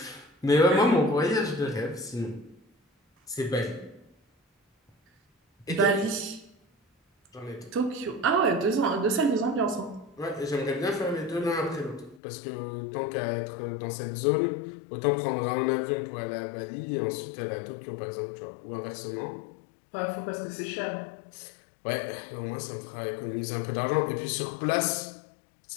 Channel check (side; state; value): right; drops out; at 12.2 s